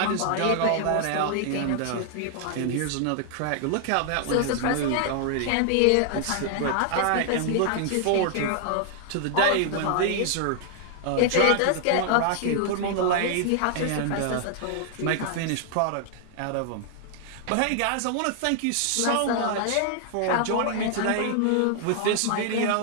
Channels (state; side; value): different; both; correlation 0.00